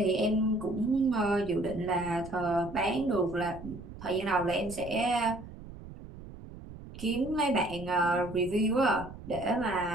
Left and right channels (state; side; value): noise; right; rumble, 14 dB below the sound